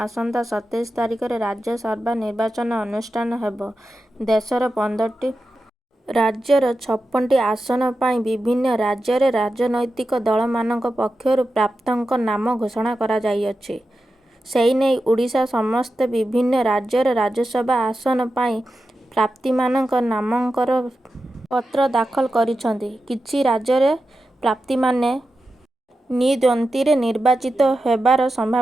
ଆସନ୍ତା 27 ତାରିଖରେ ରାଜ୍ୟସଭା ନିର୍ବାଚନ ଅନୁଷ୍ଠିତ ହେବ। ଦେଶର 15ଟି ରାଜ୍ୟର 56ଟି ଆସନ ପାଇଁ ବିଭିନ୍ନ ରାଜ୍ୟରେ ରାଜନୈତିକ ଦଳମାନଙ୍କ ପକ୍ଷରୁ ପ୍ରାର୍ଥୀଙ୍କ ନାମ ଘୋଷଣା କରାଯାଇଅଛି। ସେନେଇ ଓଡ଼ିଶା ସମେତ ବିଭିନ୍ନ ରାଜ୍ୟର ରାଜ୍ୟସଭା ଆସନ ପାଇଁ ପ୍ରାର୍ଥୀମାନେ ନାମାଙ୍କନ ପତ୍ର ଦାଖଲ କରିଛନ୍ତି। କିଛି ରାଜ୍ୟରେ ପ୍ରାର୍ଥୀମାନେ ନିର୍ଦ୍ୱନ୍ଦ୍ୱରେ ନିର୍ବାଚିତ ହେବାର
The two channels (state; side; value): normal; both; correlation 0.91